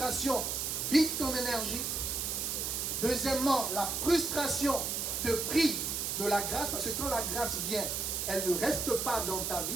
vide ton énergie. Deuxièmement, la frustration te prive de la grâce, parce que quand la grâce vient, elle ne reste pas dans ta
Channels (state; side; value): noise; right; hiss, 1 dB below the sound